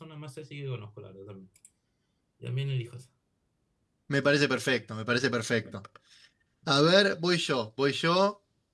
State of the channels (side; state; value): both; identical; correlation 1.00